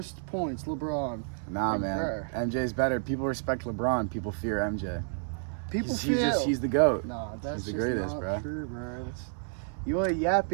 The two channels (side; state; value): left; silent; 58 dB below the other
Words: points, LeBron. Nah, Like, man. bro. MJ's better. People respect LeBron. People fear MJ. People He's the GOAT. Nah, that's He's the just greatest, not bro. true, bro. You are